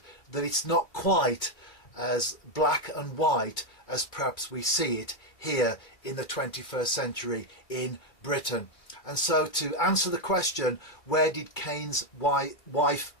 that it's not quite as black and white as perhaps we see it here in the 21st century in Britain. And so to answer the question, where did Cain's wife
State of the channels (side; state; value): right; late; 2.4 ms